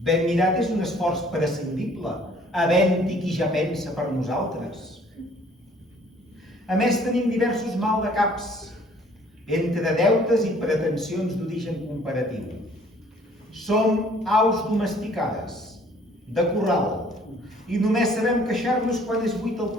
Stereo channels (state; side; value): normal; both; correlation 0.57